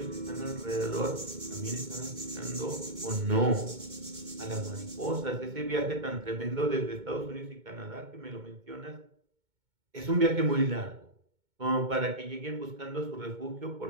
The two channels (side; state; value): left; late; 2.2 ms